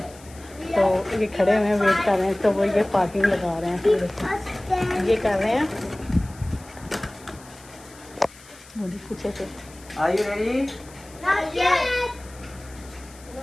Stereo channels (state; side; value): noise; left; hiss, 22 dB below the sound